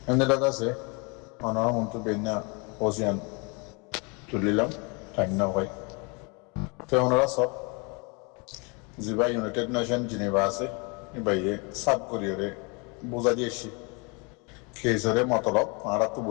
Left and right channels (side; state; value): right; quieter; 31.3 dB